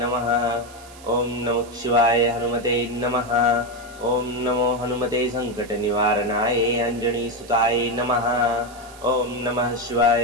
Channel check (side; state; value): right; noise; hiss, 21 dB below the sound